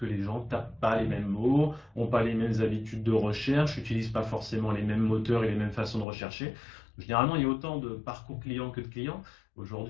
les gens tapent pas les mêmes mots, ont pas les mêmes habitudes de recherche, n'utilisent pas forcément les mêmes moteurs et les mêmes façons de rechercher. Généralement, il y a autant de parcours clients que de clients.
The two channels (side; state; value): right; drops out; at 6.1 s